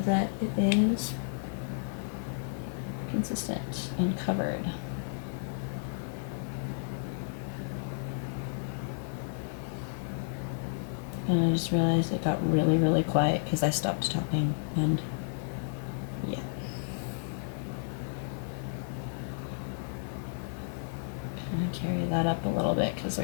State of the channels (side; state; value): right; silent; 56 dB below the other